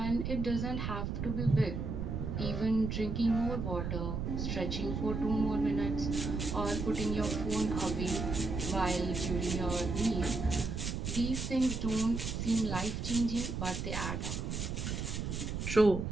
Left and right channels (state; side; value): noise; right; rumble, 3 dB below the sound